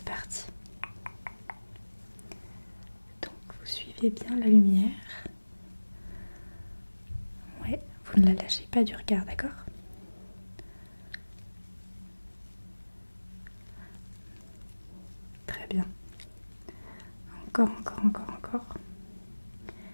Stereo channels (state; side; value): inverted; both; correlation -1.00